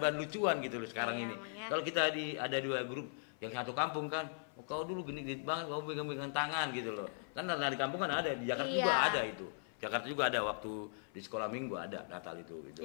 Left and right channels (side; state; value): right; silent; 52 dB below the other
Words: lucuan gitu loh sekarang ini. Kalau kita ada 2 grup yang satu kampung kan, kau dulu gini banget, kau megang-megang tangan gitu loh. Kan di kampung kan ada, di Jakarta juga ada itu. Jakarta juga ada waktu di sekolah minggu ada Natal itu gitu